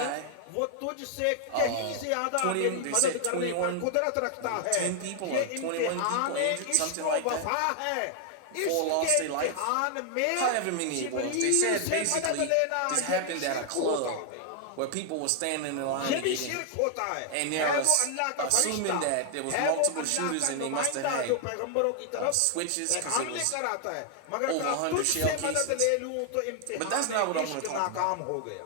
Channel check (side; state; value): both; different; correlation 0.00